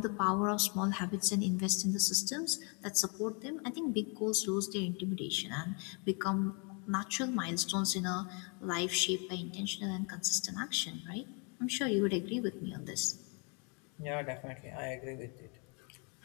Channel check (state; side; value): quieter; right; 35.7 dB